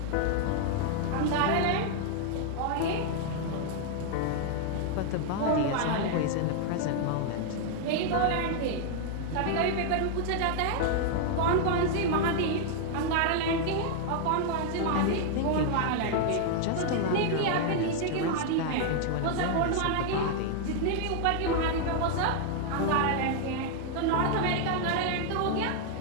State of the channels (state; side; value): different; both; correlation 0.00